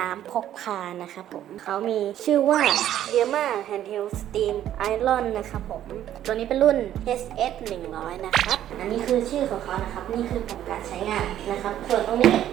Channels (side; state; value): left; quieter; 11.6 dB